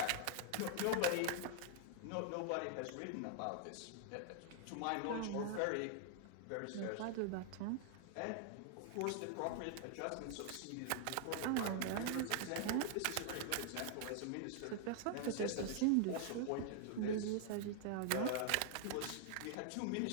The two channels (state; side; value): different; both; correlation 0.00